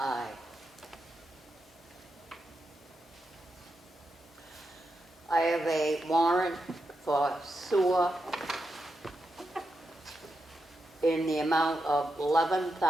I have a warrant for sewer in the amount of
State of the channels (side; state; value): both; normal; correlation 0.86